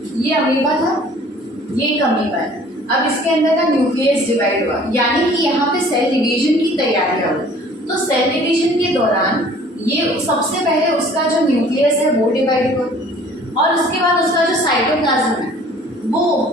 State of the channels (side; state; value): both; normal; correlation 0.52